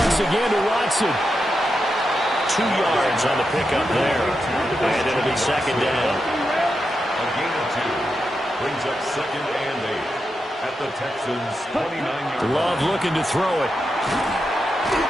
again to Watson. 2 yards on the pickup there. And it'll be 2nd down. A gain of 2 brings up 2nd and 8 at the Texans' 29-yard line. Love looking to throw it.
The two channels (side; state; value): both; normal; correlation 0.87